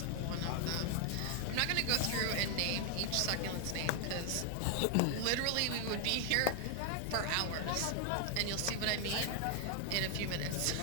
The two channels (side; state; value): both; different; correlation 0.00